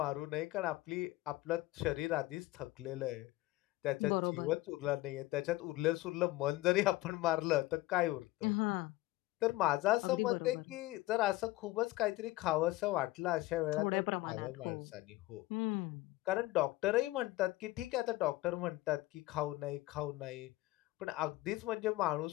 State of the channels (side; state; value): right; quieter; 18.6 dB